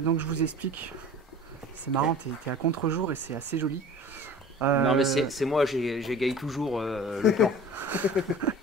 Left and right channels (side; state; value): both; normal; correlation 0.41